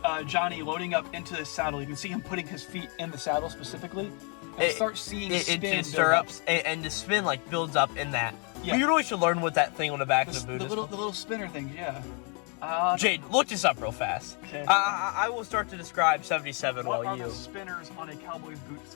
Johnny loading up into the saddle. You can see him putting his feet in the saddle specifically. And start seeing spin stirrups, and the spin like builds up in that. Yeah. You really should learn what that thing on the back of the boot is. The little spinner thing, yeah. Jade, look this up real fast. Okay. I will start to describe 77 what while you... What are the spinners on a cowboy's boots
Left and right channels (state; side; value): quieter; right; 36.7 dB